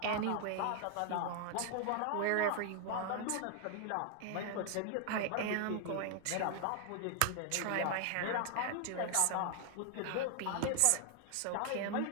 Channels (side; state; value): both; different; correlation 0.00